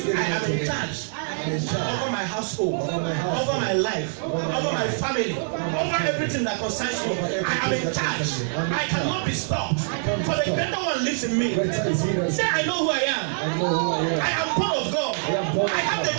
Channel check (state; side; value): silent; left; digital silence